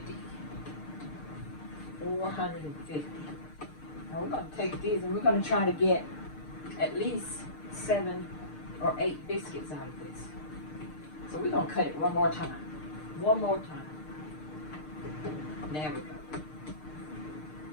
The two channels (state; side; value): late; right; 6.6 ms